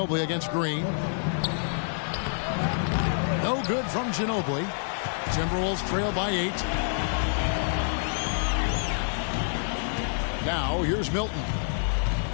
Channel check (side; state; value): right; silent; 58 dB below the other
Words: against Green. No good from Ginobili. Timberwolves trail by 8. Now here's Milton.